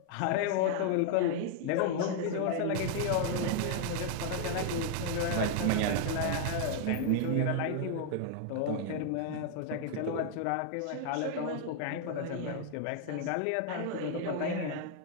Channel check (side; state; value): both; different; correlation 0.00